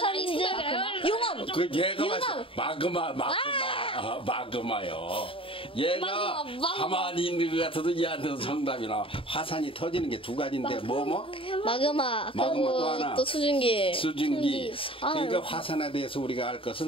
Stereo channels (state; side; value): late; right; 0.26 ms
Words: 용암. 그 얘가 마그마요. 얘가 가만히 있는 것 같아도 얘한테도 정답이 나와. 화산이 터지는 게 두 가지인데 마그마. 또 그리고 하나. 또 수증기. 그러니까 화산에 대해서 우리가 알 것은